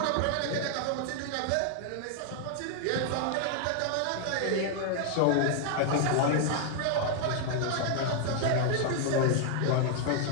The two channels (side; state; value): both; different; correlation 0.00